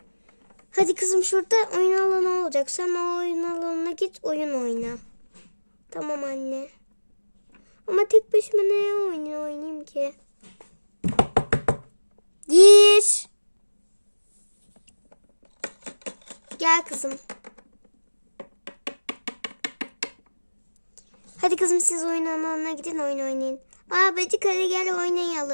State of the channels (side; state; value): both; inverted; correlation -1.00